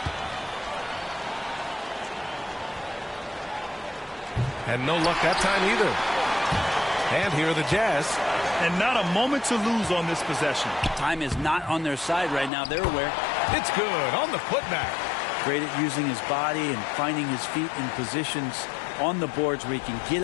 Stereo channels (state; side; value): drops out; right; at 12.5 s